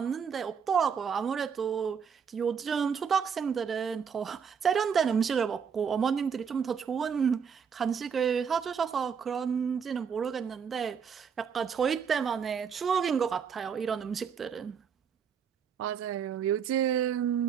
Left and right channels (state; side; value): quieter; left; 6.9 dB